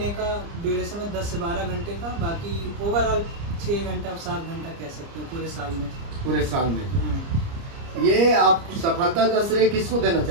का ड्यूरेशन है, 10 से 12 घंटे का। बाकी ओवरऑल 6 घंटा 7 घंटा कह सकते हैं पूरे साल में। पूरे साल में। ये आप सफलता का श्रेय किसको देना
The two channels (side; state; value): left; late; 30 ms